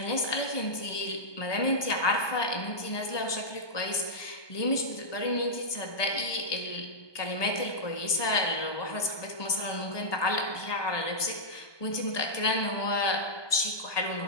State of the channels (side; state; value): right; late; 1.2 ms